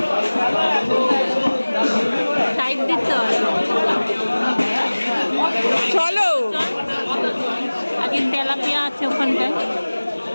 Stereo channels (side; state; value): both; inverted; correlation -1.00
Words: দিতে হবে। চলো। আগে তেলাপিয়া আছে ওখানটায়,